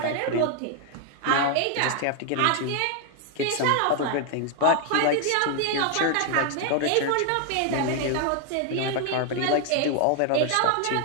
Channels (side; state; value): both; different; correlation 0.00